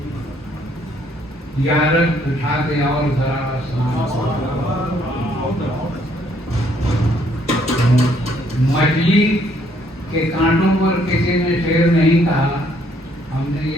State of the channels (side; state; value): both; normal; correlation 0.67